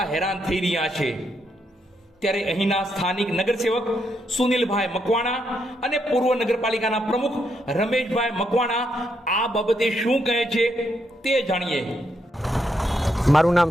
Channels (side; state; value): both; normal; correlation 0.78